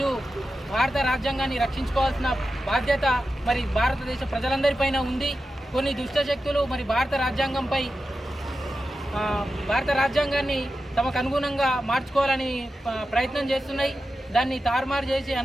భారత రాజ్యాంగాన్ని రక్షించుకోవాల్సిన బాధ్యత మరి భారతదేశ ప్రజలందరిపైన ఉంది. కొన్ని దుష్టశక్తులు మరి భారత రాజ్యాంగాన్ని తమకు అనుగుణంగా మార్చుకోవాలని ప్రయత్నం చేస్తున్నాయి. దాన్ని తారుమారు చేసి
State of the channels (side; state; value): both; normal; correlation 0.91